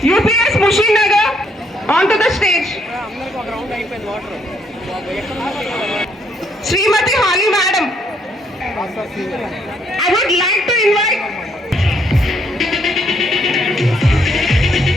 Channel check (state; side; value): normal; both; correlation 0.70